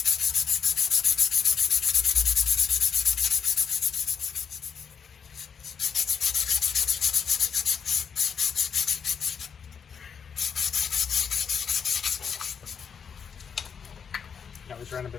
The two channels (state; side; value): quieter; right; 6.8 dB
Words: I always run a